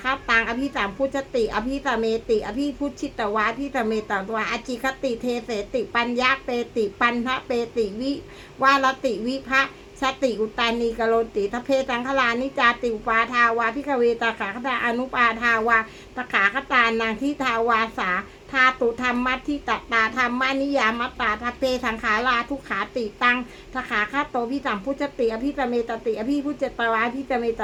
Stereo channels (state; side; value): identical; both; correlation 1.00